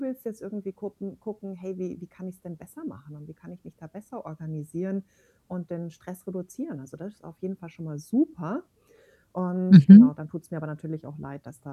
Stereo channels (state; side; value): identical; both; correlation 1.00